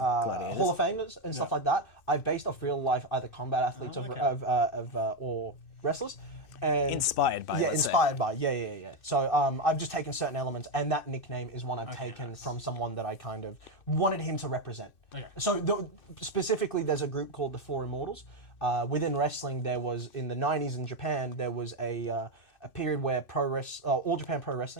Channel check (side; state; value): right; late; 2.6 ms